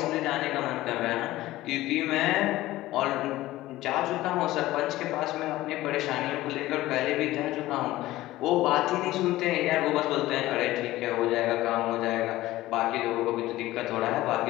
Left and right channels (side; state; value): right; quieter; 16.7 dB